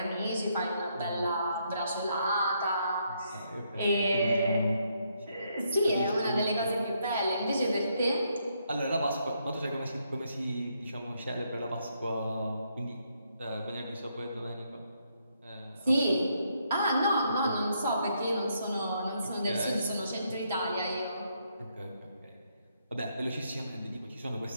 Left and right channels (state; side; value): inverted; both; correlation -0.75